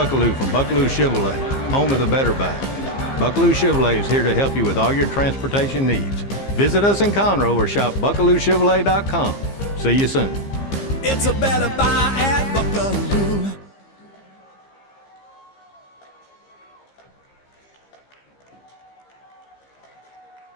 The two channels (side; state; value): right; late; 15 ms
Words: from Buckaloo Chevrolet, home of the Better Buy. Buckaloo Chevrolet is here to help you with all your transportation needs. Visit us in Conroe or shop BuckalooChevrolet.com. See you soon. It's a better buy at Buckaloo.